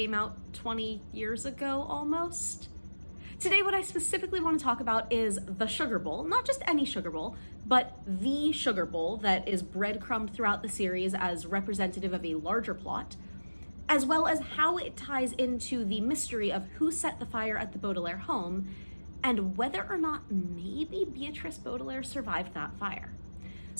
out 20 years ago almost. Today, what I specifically want to talk about is the sugar bowl, not just any sugar bowl, but the sugar bowl that is breadcrumbed throughout the series as representative of a larger plot, as well as how it ties into the mystery of who set the fire at the Baudelaire home and whether or not maybe Beatrice Baudelaire survived that fire.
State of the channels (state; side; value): inverted; both; correlation -1.00